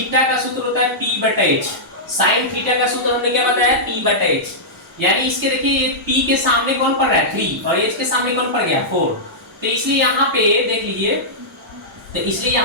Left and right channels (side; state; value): both; normal; correlation -0.12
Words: का सूत्र होता है P/H। साइन थीटा का सूत्र हमने क्या बताया, P/H। यानी इसके देखिए ये P के सामने कौन पड़ रहा है 3 और H के सामने कौन पड़ गया 4। तो इसलिए यहाँ पे देख लीजिए, तो इसलिए